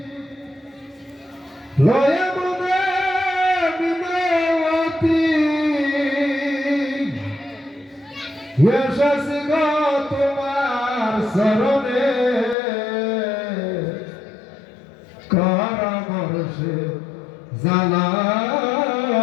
লয়া মনে বিনয়তী এসেছি গো তোমার শরণে কর বর্ষে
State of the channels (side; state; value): right; drops out; at 12.6 s